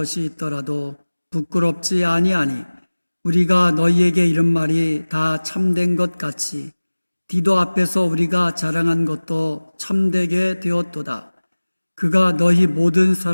있더라도 부끄럽지 아니하니 우리가 너희에게 이런 말이 다 참된 것 같이 디도 앞에서 우리가 자랑한 것도 참되게 되었도다. 그가 너희 모든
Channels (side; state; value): both; inverted; correlation -1.00